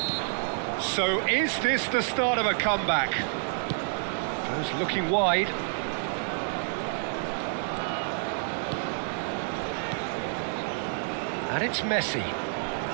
So is this the start of a comeback? Goes looking wide. And it's Messi.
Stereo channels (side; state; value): left; silent; 59 dB below the other